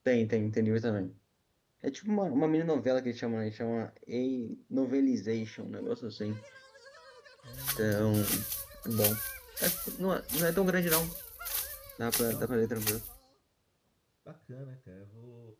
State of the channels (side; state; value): both; identical; correlation 1.00